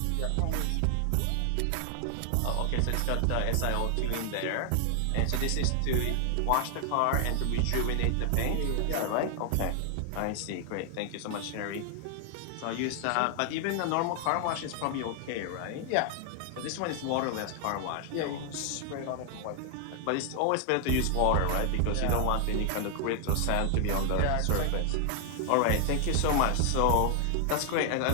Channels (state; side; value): different; both; correlation 0.00